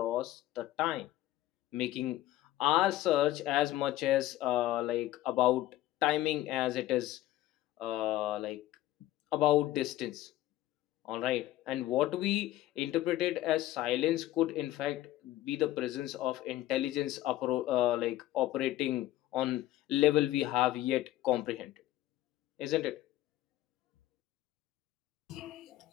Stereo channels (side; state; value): right; quieter; 14.9 dB